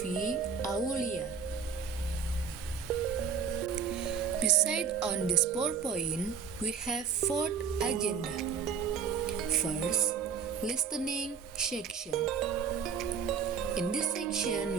Aulia. Beside on this PowerPoint, we have 4th agenda. First, listening section. In this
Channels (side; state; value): left; quieter; 6.5 dB